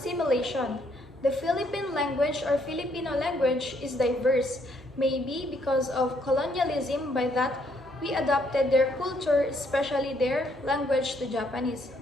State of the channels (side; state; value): both; normal; correlation 0.70